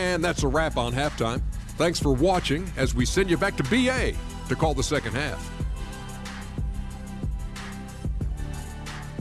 that's a wrap on halftime. Thanks for watching as we send you back to BA to call the second half.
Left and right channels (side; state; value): both; identical; correlation 1.00